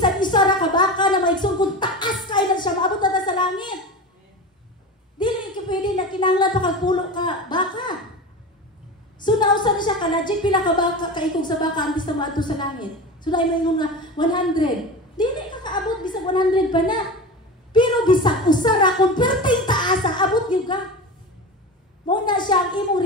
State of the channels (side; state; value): both; normal; correlation 0.28